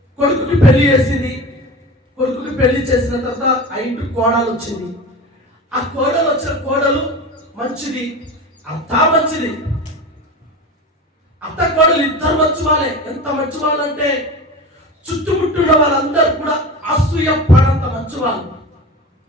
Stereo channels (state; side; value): normal; both; correlation 0.31